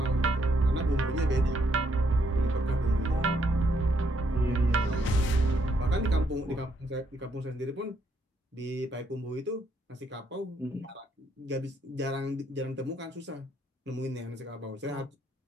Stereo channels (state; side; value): normal; both; correlation 0.74